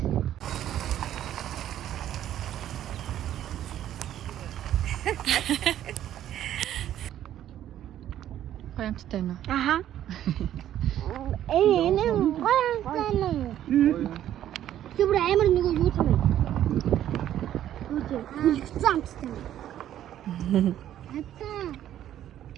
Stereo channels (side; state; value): left; quieter; 11.6 dB